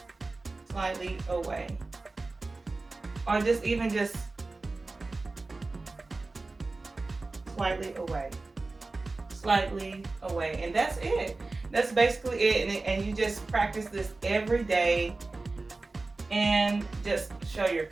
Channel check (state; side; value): quieter; left; 3.4 dB